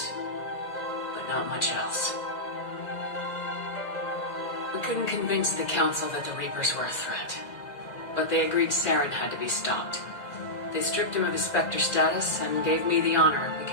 but not much else. We couldn't convince the Council that the Reapers were a threat, but they agreed Saren had to be stopped. They stripped him of his Spectre status and gave me the honor of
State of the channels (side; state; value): right; late; 2.0 ms